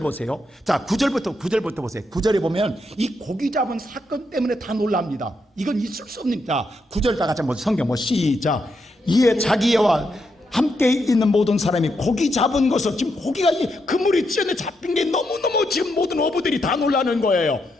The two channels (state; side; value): normal; both; correlation 0.81